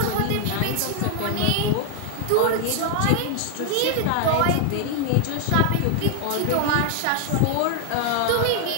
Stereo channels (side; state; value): both; different; correlation 0.00